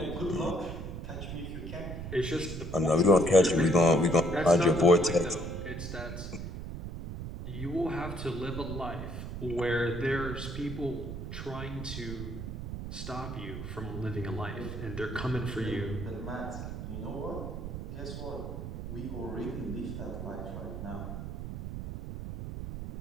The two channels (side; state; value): right; noise; rumble, 7 dB below the sound